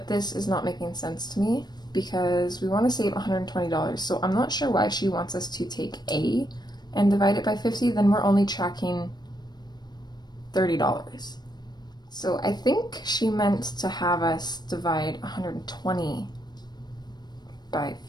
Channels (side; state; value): right; late; 0.20 ms